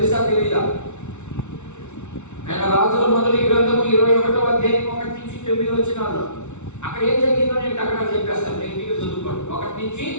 తెలీదా? ఆయన రాజుల మొదటి గ్రంథము 21వ అధ్యాయం 1 నుంచి 9 వచనాలు. అక్కడ ఏం జరిగిందో నేను అక్కడ చెప్పేస్తాను, నేను మీకు చదువుకోండి. 1 నుంచి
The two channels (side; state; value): right; late; 0.83 ms